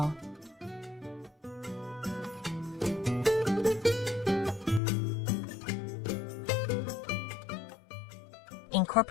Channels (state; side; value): drops out; right; at 4.8 s